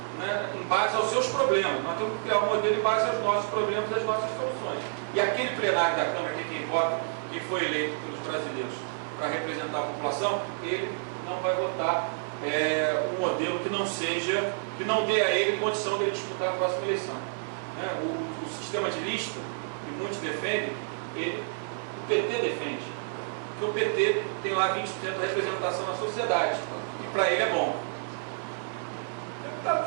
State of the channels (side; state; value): left; silent; 58 dB below the other